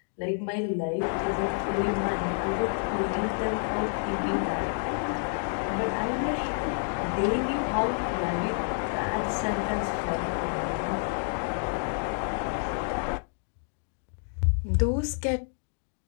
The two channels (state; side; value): silent; right; digital silence